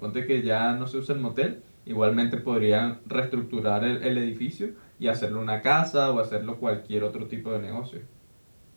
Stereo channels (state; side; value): inverted; both; correlation -1.00